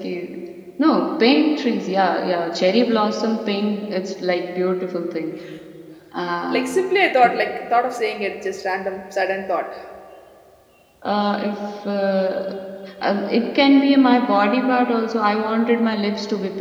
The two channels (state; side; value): identical; both; correlation 1.00